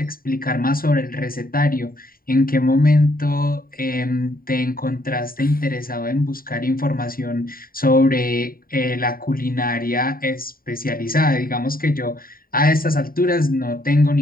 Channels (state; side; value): late; right; 0.42 ms